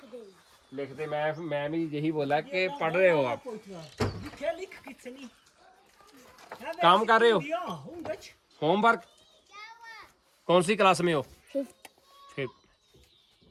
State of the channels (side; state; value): both; identical; correlation 1.00